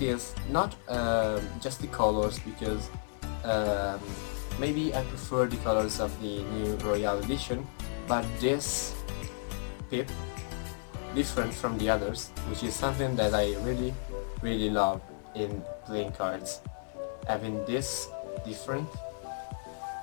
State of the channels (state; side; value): silent; right; digital silence